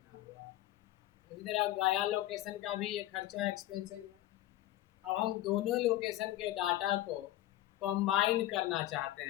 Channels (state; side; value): quieter; right; 15.1 dB